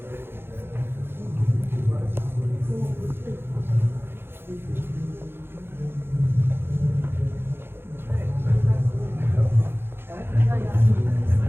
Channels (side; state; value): left; late; 0.11 ms